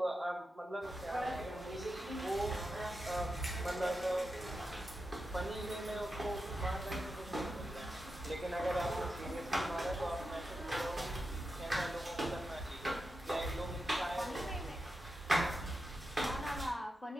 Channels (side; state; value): both; normal; correlation 0.89